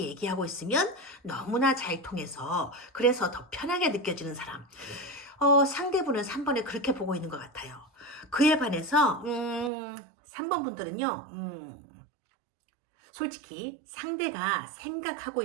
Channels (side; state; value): left; drops out; at 9.7 s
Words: 있으면 너무나 잘 통해서 그래서 더 편하게 느껴지는 사람, 상대분은 3번을 그렇게 보고 있는 것 같아요. 그에 반해서 3번 분들은요, 솔직히 상대가 생각하고